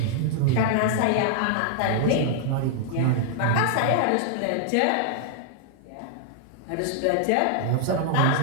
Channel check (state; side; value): different; both; correlation -0.01